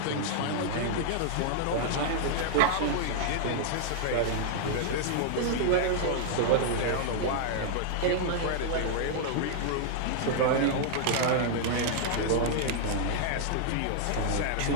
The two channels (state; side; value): different; both; correlation -0.01